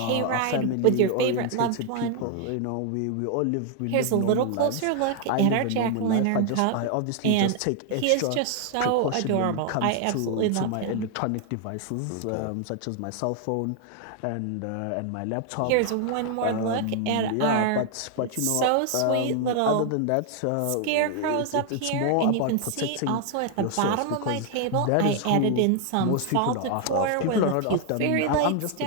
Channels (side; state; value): both; different; correlation 0.00